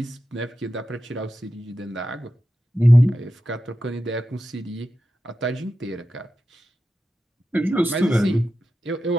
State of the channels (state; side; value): normal; both; correlation 0.91